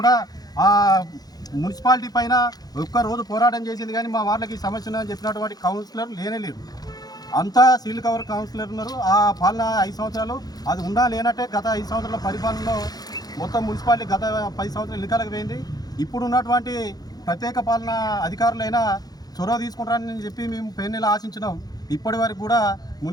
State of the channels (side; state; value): right; late; 0.19 ms